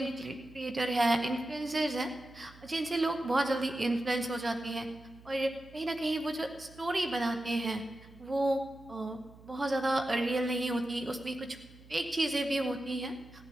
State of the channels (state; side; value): noise; right; hum, 22 dB below the sound